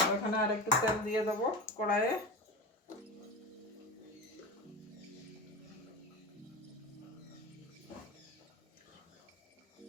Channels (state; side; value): normal; both; correlation 0.27